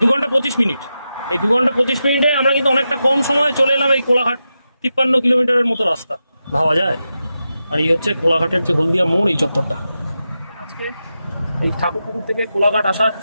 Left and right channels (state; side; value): inverted; both; correlation -0.90